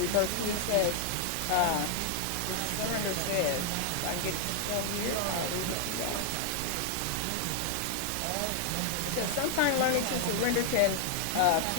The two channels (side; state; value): both; different; correlation 0.00